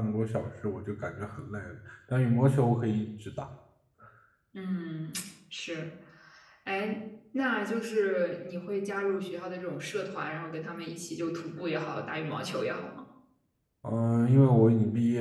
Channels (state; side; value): identical; both; correlation 1.00